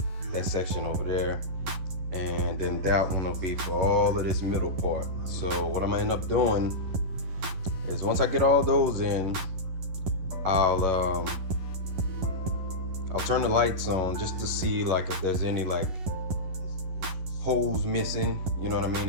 that section over there, and then that one will be for all of this middle part. So what I'm gonna end up doing is, once I get all those in, I'll turn the lights on just to see like if there's any like holes missing, you know what I mean?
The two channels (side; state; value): left; late; 11 ms